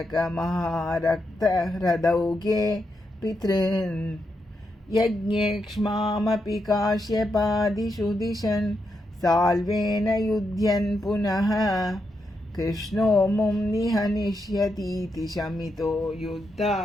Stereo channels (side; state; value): both; normal; correlation 0.83